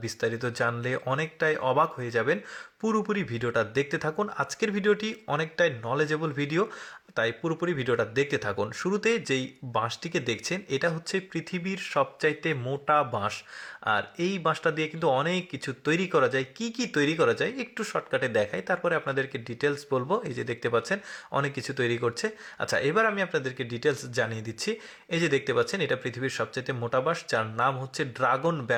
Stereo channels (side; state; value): both; identical; correlation 1.00